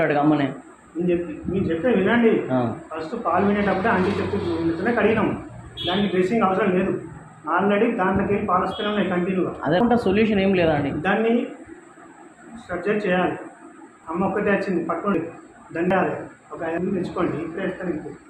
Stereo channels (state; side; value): identical; both; correlation 1.00